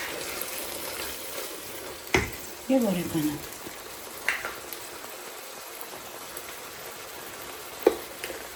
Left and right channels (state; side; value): identical; both; correlation 1.00